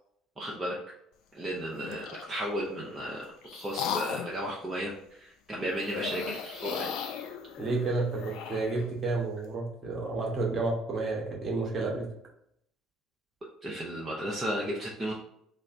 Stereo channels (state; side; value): normal; both; correlation 0.60